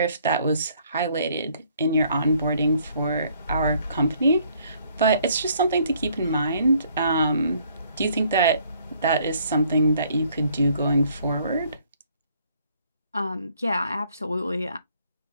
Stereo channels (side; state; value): both; inverted; correlation -0.64